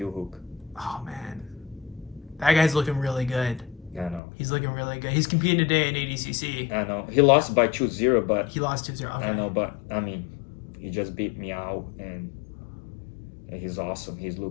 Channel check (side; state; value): right; drops out; at 4.2 s